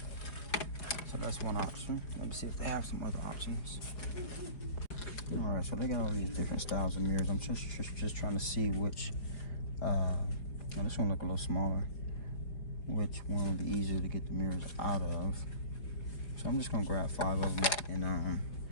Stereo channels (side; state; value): right; late; 4.6 ms